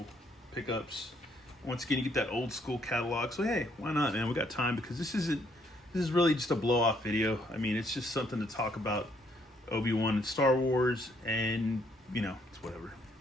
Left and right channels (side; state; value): both; normal; correlation 0.69